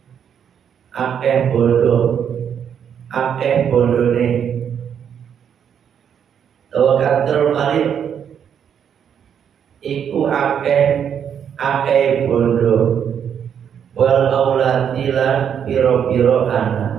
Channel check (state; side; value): quieter; left; 8.2 dB